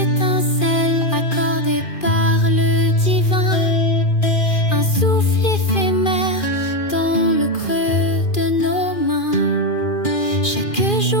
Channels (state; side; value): late; right; 2.4 ms